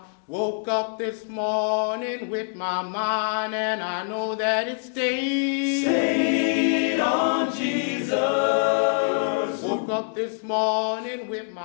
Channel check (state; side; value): silent; right; digital silence